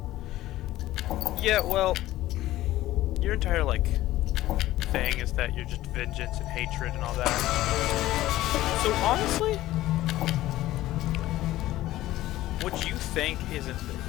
Yeah, well, your entire, like, thing is that you're just vengeance and hatred and all that. So, honestly, what you think isn't,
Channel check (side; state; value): right; quieter; 15.5 dB